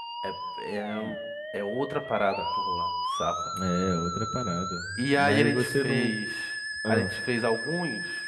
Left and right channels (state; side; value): identical; both; correlation 1.00